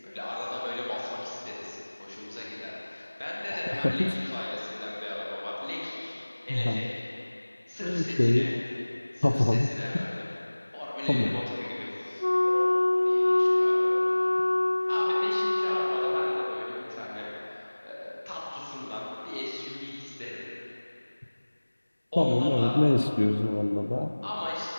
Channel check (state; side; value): inverted; both; correlation -1.00